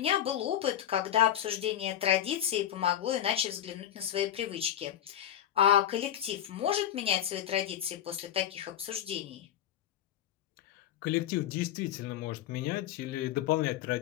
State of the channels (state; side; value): quieter; right; 11.2 dB